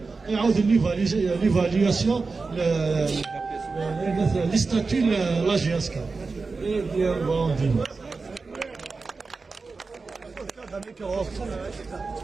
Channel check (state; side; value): quieter; left; 4.2 dB